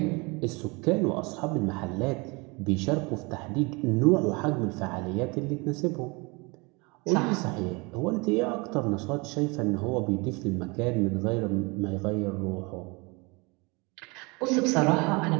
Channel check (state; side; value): quieter; left; 27.6 dB